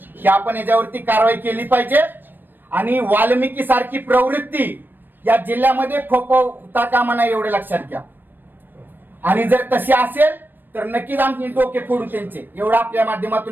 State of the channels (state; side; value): late; left; 0.093 ms